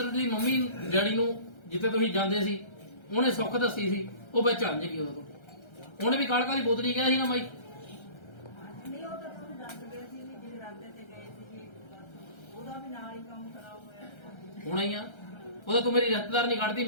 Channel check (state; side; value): late; right; 1.3 ms